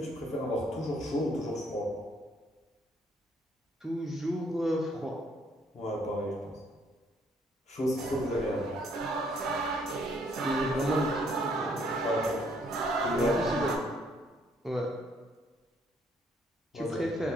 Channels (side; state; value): both; normal; correlation 0.67